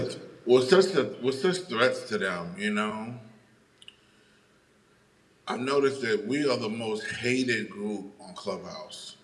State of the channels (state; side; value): identical; both; correlation 1.00